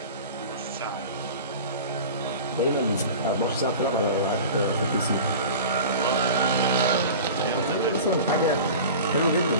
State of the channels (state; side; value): inverted; both; correlation -0.36